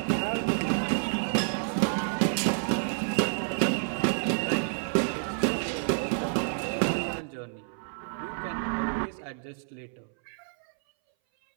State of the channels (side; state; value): left; silent; 58 dB below the other